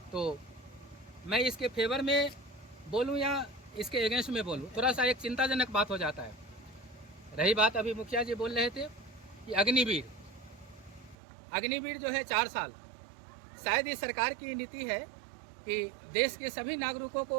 तो मैं इसके फेवर में बोलूं या इसके अगेंस्ट में बोलूं, थोड़ा सा एक चिंताजनक बात हो जाता है। रही बात अभी मुखिया जी बोल रहे थे कि अग्निवीर जो है 4 साल, शायद ये सरकार की नीति है कि देश के सभी नागरिकों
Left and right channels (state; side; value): drops out; left; at 11.2 s